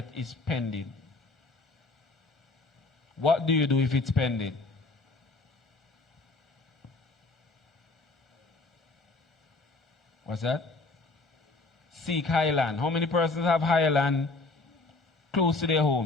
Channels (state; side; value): quieter; right; 3.4 dB